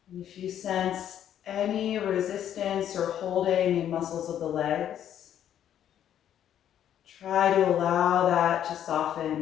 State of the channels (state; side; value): quieter; right; 10.3 dB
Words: And if you sense any resistance or holding in muscles of the legs, try to allow that to